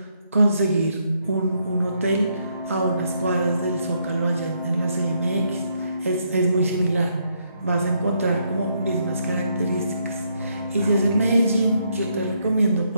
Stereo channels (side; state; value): both; inverted; correlation -0.75